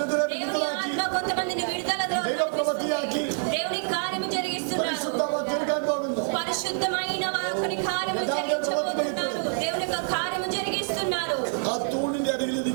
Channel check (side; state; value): left; silent; digital silence